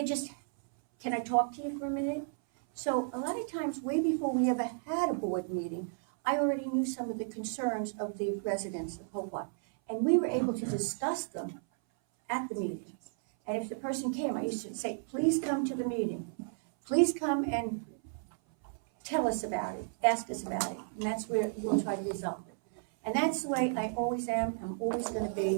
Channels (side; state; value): left; silent; 56 dB below the other